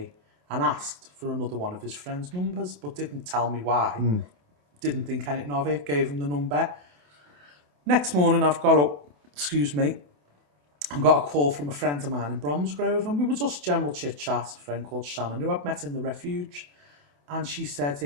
and asked for another one of his friend's numbers, but didn't tell me why. Didn't think anything of it, gave him the number. Next morning, I've got up, and got a call from a friend of mine in Bromsgrove, and we were just general chit-chat, a friend called Shannon, who I'd met in the refuge. And she said,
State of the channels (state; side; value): late; left; 28 ms